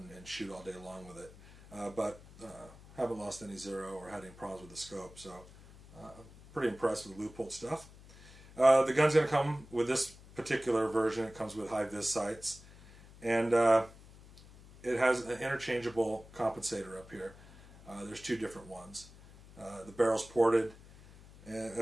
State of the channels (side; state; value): left; noise; hum, 21 dB below the sound